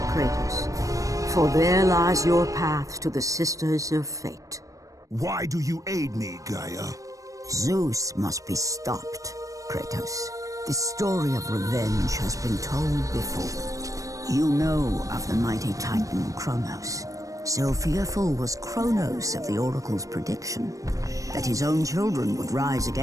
Kratos, for there lies your path to the Sisters of Fate. Why do you aid me, Gaia? Zeus must be stopped, Kratos. The story of revenge has been told before. You know of the mighty Titan Kronos. So fearful was Kronos of the Oracle's prediction that his own children would rise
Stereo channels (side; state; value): left; late; 0.16 ms